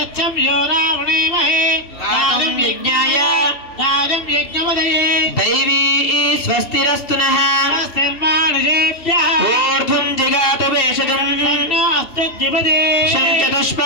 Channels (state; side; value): late; right; 2.7 ms